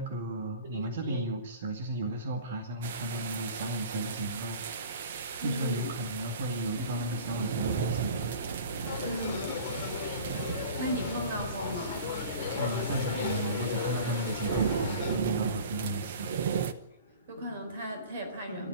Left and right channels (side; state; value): both; inverted; correlation -0.41